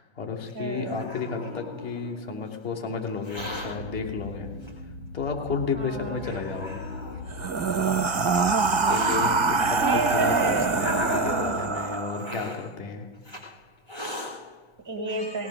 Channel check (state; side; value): late; left; 1.8 ms